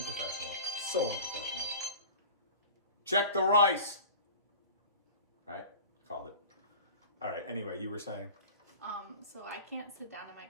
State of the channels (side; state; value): both; inverted; correlation -0.39